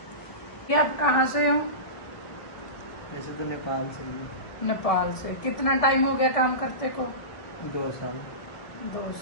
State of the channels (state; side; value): late; right; 1.3 ms